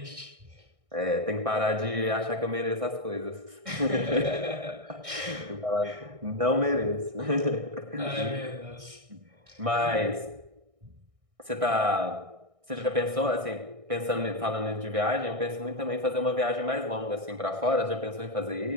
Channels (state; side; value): late; left; 1.6 ms